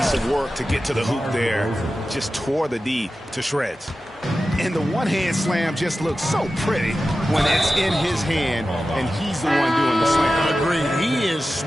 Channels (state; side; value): normal; both; correlation 0.94